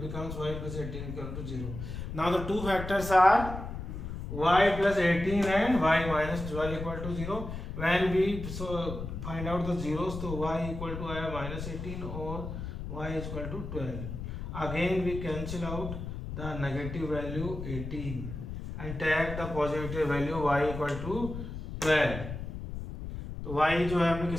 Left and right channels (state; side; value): noise; left; rumble, 7 dB below the sound